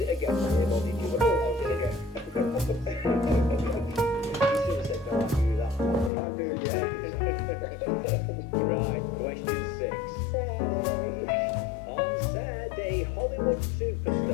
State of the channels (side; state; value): right; drops out; at 6.1 s